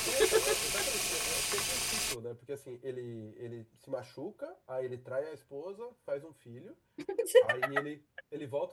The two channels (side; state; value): both; identical; correlation 1.00